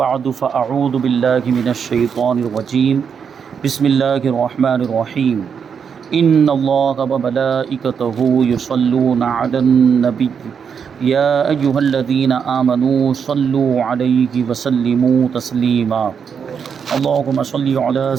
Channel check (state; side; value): quieter; left; 6.8 dB